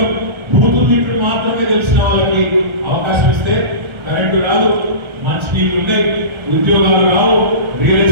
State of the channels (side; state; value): left; late; 1.4 ms